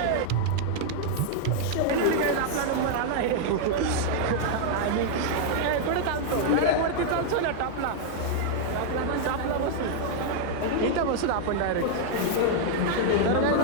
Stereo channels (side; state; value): both; different; correlation -0.01